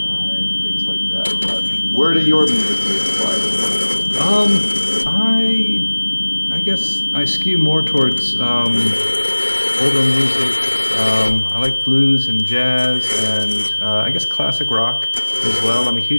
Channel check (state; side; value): inverted; both; correlation -1.00